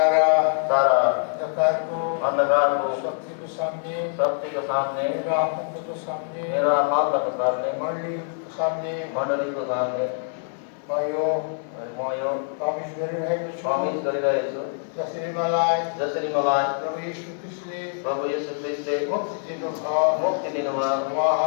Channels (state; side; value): silent; right; digital silence